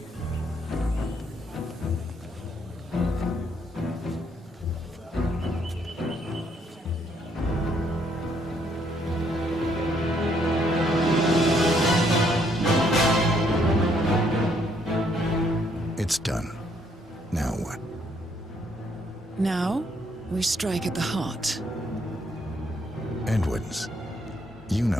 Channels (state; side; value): normal; both; correlation 0.70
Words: It's done. Now what? Now, we strike at the heart. Edwards. You know